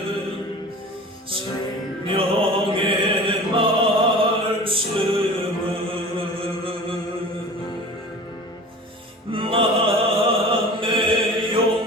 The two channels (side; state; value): both; normal; correlation 0.39